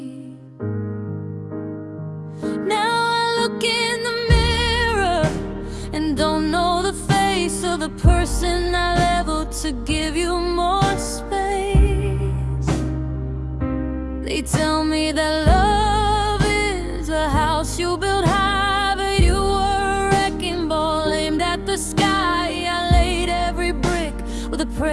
Now I look in the mirror and don't know the face of the person I leveled to give you more space. They tell me that love is a house you build high, but you were a wrecking ball aimed at the sky. I laid every brick with a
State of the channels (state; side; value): identical; both; correlation 1.00